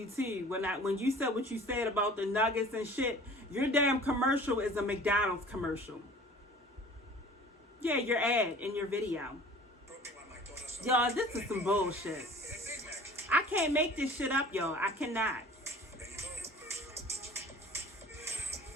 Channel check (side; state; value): both; normal; correlation 0.45